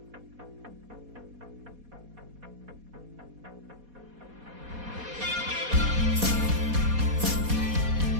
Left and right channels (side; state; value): left; late; 4.2 ms